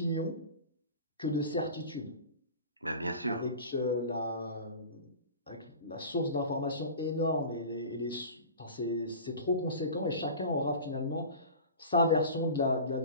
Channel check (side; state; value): both; inverted; correlation -0.36